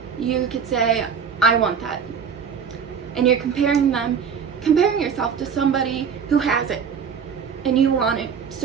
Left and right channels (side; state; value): left; quieter; 6.7 dB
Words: You could say, I want that. And you're comparing yourself to somebody who has it, and you want it,